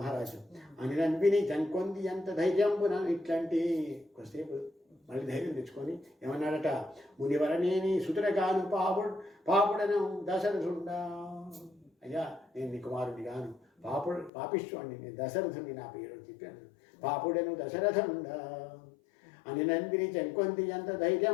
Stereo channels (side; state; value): right; drops out; at 14.3 s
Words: అనినంపిని జంకొంది ఎంత ధైర్యంబున ఇట్లాంటి కొద్దిసేపు మళ్ళీ ధైర్యం తెచ్చుకొని ఏమన్నాడట, మునివరనేని సుతుడగాను పాపుడను దశరథుండా. అయ్యా నేను నీ కుమారుడి గాను పాపిష్వాణ్ణి, నేను దశరథుని నా పేరు అని చెప్పాను. పాపుడను దశరథుండా అని నందిని చెంకొంది ఎంత